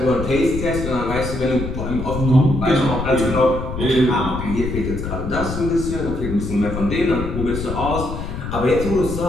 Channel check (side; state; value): left; noise; rumble, 6 dB below the sound